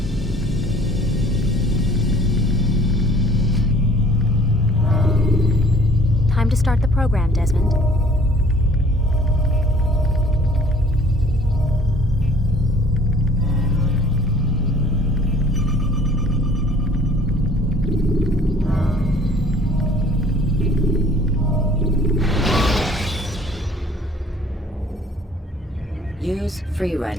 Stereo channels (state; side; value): normal; both; correlation 0.53